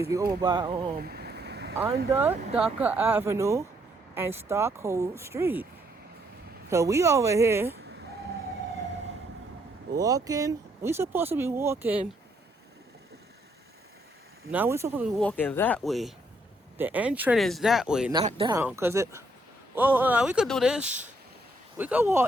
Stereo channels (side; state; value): both; normal; correlation 0.71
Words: We over by under Dhaka Avenue and Stockholm Street. So we over here walking. We supposed to be walking. Now we supposed to be walking that way. The entrance is that way, not down. Cause it. Well, we could do this. We could